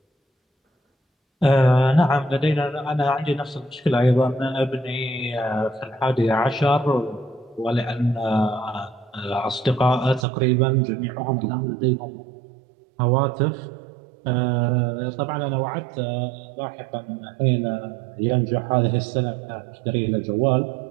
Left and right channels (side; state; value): left; drops out; at 10.2 s